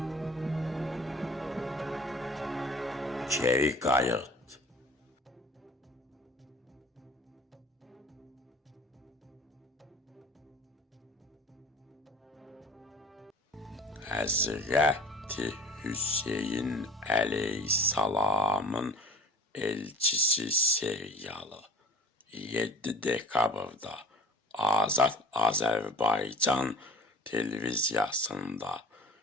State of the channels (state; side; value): normal; both; correlation 0.47